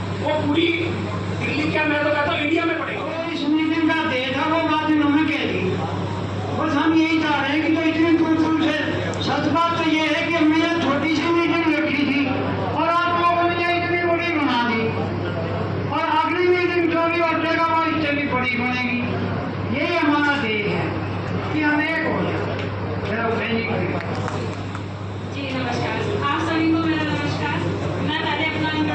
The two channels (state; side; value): identical; both; correlation 1.00